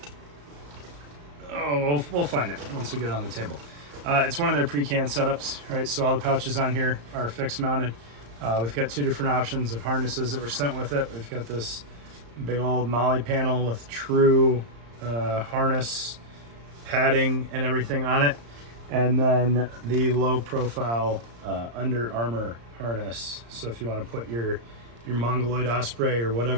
Oh, we'll find it once we get it on the table. It's one of their pre-canned setups, right? So all the pouches on here are fixed mounted. We've got two different options of harnesses that were sent with it. We've got this big old Molly panel with true harness padding and everything on it. And then the low profile Under Armour harness. So if you want to put your Mongoloid Osprey or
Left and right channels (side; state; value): left; late; 35 ms